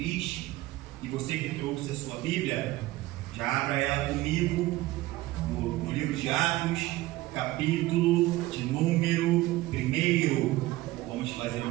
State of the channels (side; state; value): left; quieter; 17.8 dB